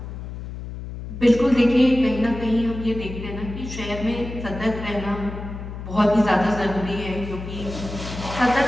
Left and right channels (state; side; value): noise; left; hum, 9 dB below the sound